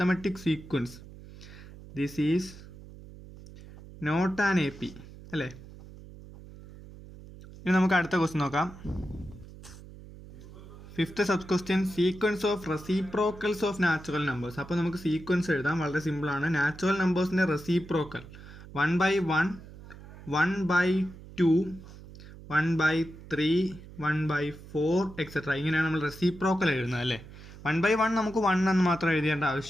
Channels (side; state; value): right; noise; hum, 17 dB below the sound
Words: sequence. This is not an AP അല്ലേ. ഇനി നമുക്ക് അടുത്ത ക്വസ്റ്റ്യൻ നോക്കാം. 5th sub question sequence of reciprocals of natural numbers. അപ്പോൾ നമുക്ക് സീക്വൻസ് എഴുതാം, വളരെ സിമ്പിളാണ്. നാച്ചുറൽ നമ്പേഴ്സിൻ്റെ റെസിപ്രോക്കൽ 1/1, 1/2, 1/3, 1/4 എക്സെട്ര. ഇങ്ങനെയാണ് നമ്മൾ റെസിപ്രോക്കൽ എഴുതുന്നത് അല്ലേ. 1/1 നമുക്ക് 1 എന്ന് മാത്രം എഴുതേണ്ട